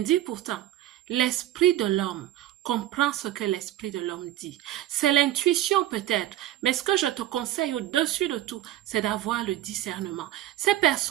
pourtant. L'esprit de l'homme comprend ce que l'esprit de l'homme dit. C'est l'intuition peut-être, mais ce que je te conseille au-dessus de tout, c'est d'avoir le discernement. Ces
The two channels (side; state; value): left; quieter; 13.6 dB